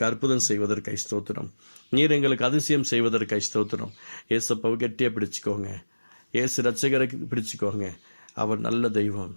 அற்புதம் செய்வதற்காய் ஸ்தோத்திரம். நீர் எங்களுக்கு அதிசயம் செய்வதற்காய் ஸ்தோத்திரம். ஏசப்பாவை கெட்டியாக பிடிச்சிக்கோங்க. ஏசு ரட்சகரை பிடிச்சிக்கோங்க. அவர் நல்ல தெய்வம்,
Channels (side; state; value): both; inverted; correlation -1.00